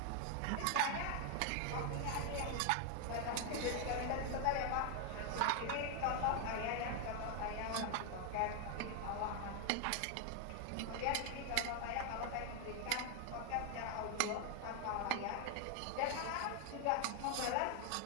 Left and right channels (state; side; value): different; both; correlation 0.01